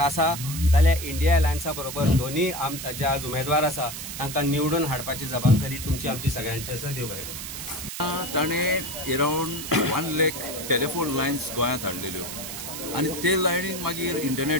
जाल्यार इंडिया अलायन्सा बरोबर दोन्ही जे आज उमेदवार आसा तांकां निवडून हाडपाची जबाबदारी तुमची आमची सगळ्यांची आसा. देव बरें करूं. ताणें अरावंड 1 लाख टेलिफोन लायन्स गोंयांत हाडलेल्यो आनी ते लायनीन मागीर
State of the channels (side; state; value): right; noise; hiss, 8 dB below the sound